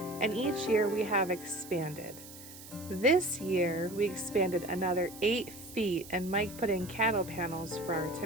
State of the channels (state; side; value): noise; right; hiss, 16 dB below the sound